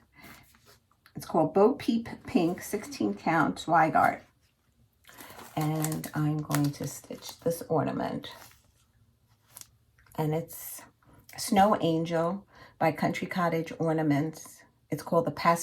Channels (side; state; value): both; identical; correlation 1.00